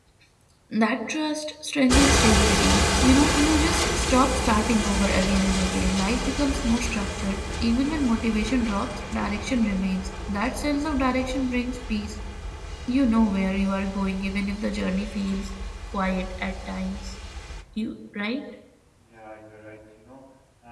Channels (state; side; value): identical; both; correlation 1.00